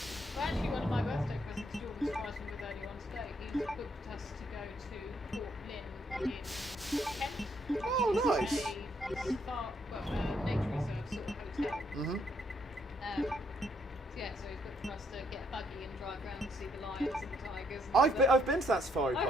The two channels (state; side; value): normal; both; correlation 0.72